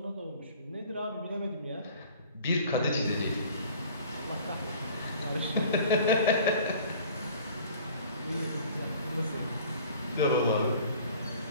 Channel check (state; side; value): inverted; both; correlation -0.48